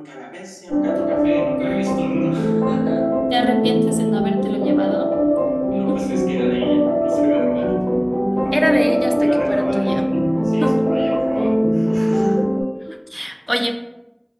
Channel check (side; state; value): both; identical; correlation 1.00